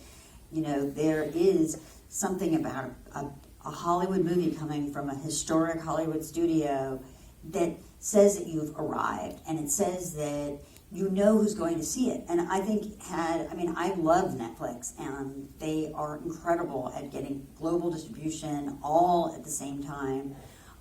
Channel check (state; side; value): identical; both; correlation 1.00